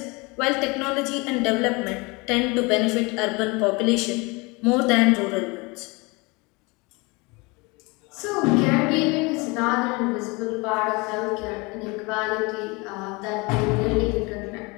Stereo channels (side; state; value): right; quieter; 26.6 dB